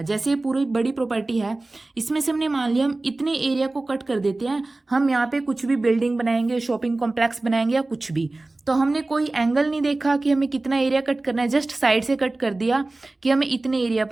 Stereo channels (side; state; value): left; quieter; 3.0 dB